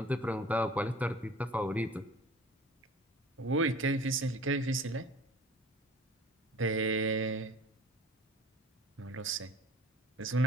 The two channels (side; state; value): both; normal; correlation 0.45